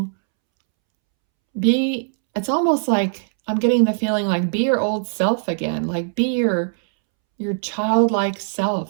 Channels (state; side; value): silent; left; 65 dB below the other